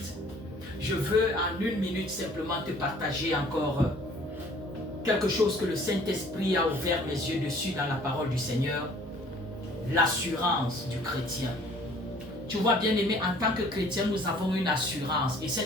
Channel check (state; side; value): normal; both; correlation 0.54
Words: Je veux en 1 minute simplement te partager encore quelque chose que le Saint-Esprit a ouvert mes yeux dessus dans la parole du Seigneur. L'assurance du chrétien. Tu vois bien-aimé, en tant que chrétien, nous avons une assurance et